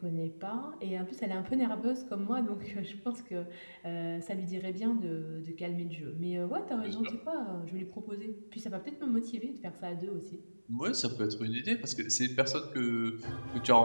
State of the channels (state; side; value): inverted; both; correlation -1.00